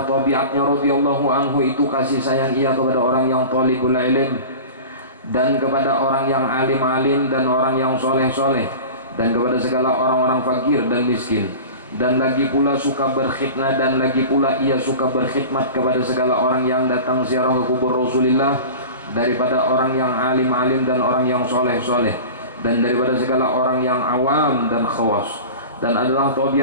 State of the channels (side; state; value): both; inverted; correlation -0.35